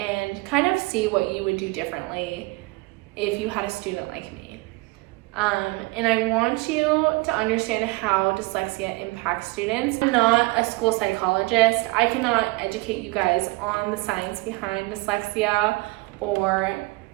kind of see what you would do differently if you had a student like me. And I want you to understand how dyslexia impacts students. I'm not a school psychologist. I cannot educate you guys on the science behind dyslexia or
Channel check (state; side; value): quieter; left; 24.5 dB